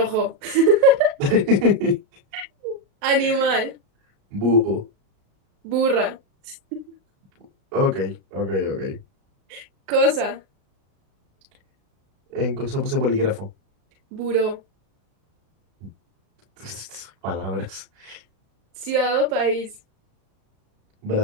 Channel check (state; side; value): late; left; 37 ms